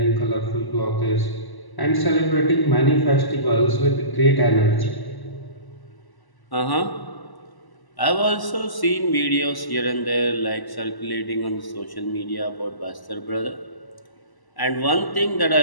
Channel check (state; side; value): late; right; 1.0 ms